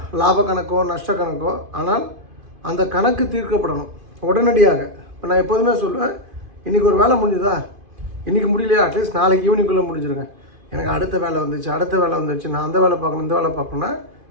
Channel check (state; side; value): late; left; 2.5 ms